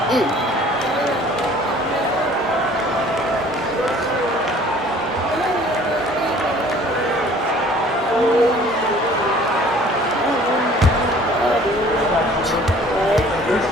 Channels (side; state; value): both; normal; correlation 0.52